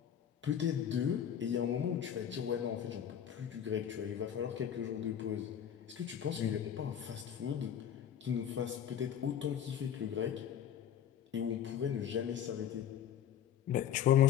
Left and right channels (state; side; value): quieter; right; 9.5 dB